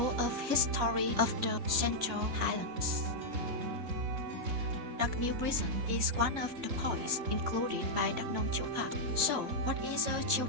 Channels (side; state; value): left; late; 3.5 ms